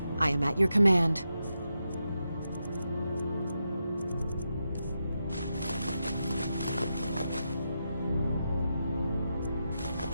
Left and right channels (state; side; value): inverted; both; correlation -0.86